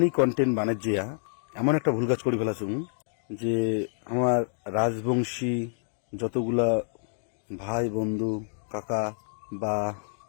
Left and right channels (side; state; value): right; silent; digital silence